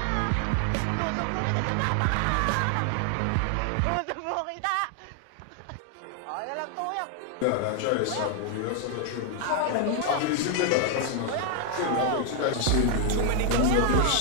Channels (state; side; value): different; both; correlation 0.00